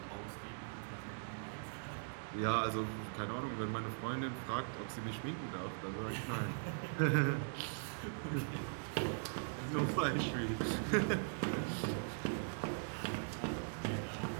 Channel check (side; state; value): left; silent; digital silence